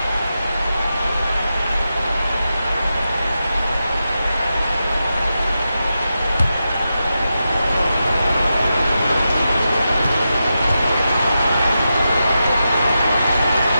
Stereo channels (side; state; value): both; inverted; correlation -0.89